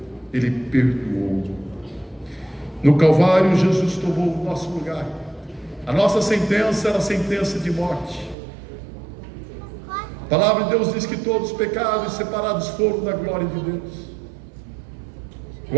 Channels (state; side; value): drops out; left; at 8.3 s